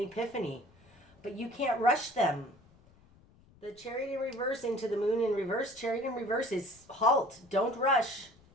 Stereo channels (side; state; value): left; noise; rumble, 28 dB below the sound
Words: but you can't rush them. The Chariot in reverse into the Moon in reverse. Chariot in reverse is halt. Don't rush.